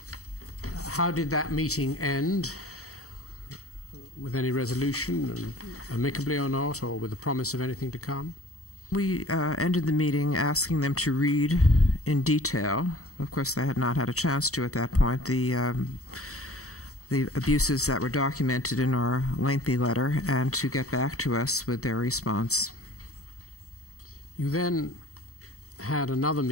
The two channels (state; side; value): late; right; 0.65 ms